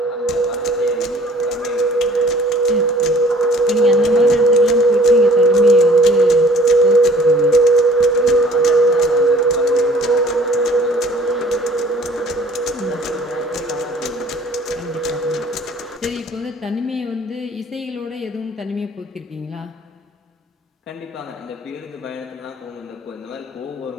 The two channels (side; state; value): both; normal; correlation 0.53